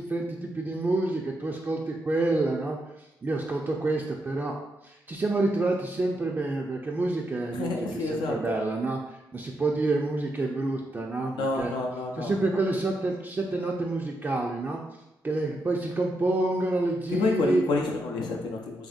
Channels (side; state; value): both; normal; correlation 0.81